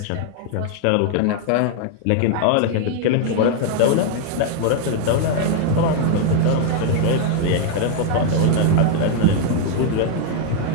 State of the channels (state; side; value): different; both; correlation 0.00